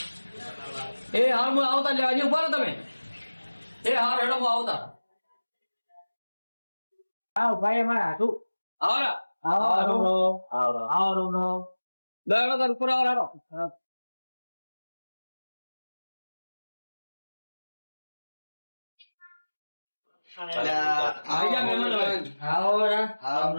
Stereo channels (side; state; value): both; inverted; correlation -1.00